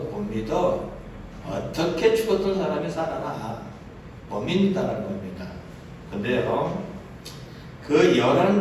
믿어. 어떻게 죽었던 사람이 살아나? 못 믿는다는 겁니다. 근데요, 그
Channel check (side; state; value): both; identical; correlation 1.00